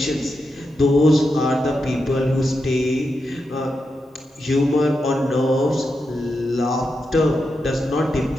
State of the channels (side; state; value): both; normal; correlation 0.87